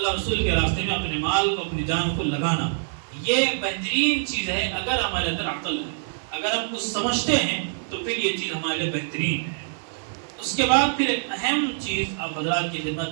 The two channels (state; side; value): silent; left; digital silence